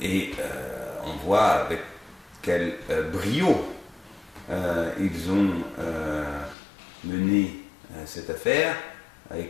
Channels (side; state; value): right; drops out; at 6.6 s